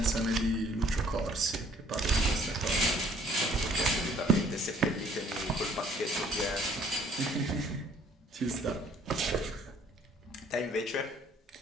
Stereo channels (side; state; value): both; normal; correlation 0.59